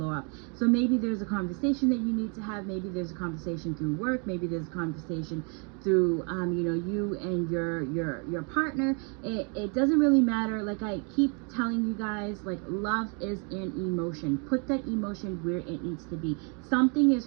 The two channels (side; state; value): left; quieter; 36.3 dB